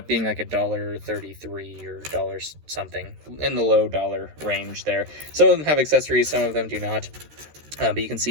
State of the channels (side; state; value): left; late; 13 ms